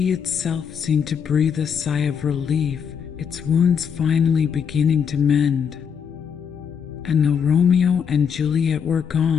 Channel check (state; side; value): quieter; right; 7.2 dB